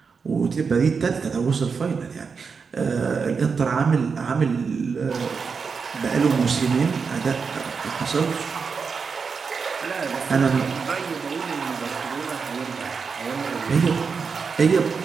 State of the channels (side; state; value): left; quieter; 5.4 dB